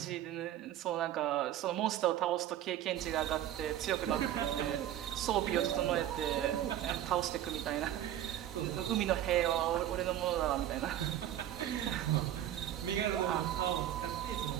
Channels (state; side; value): quieter; left; 11.8 dB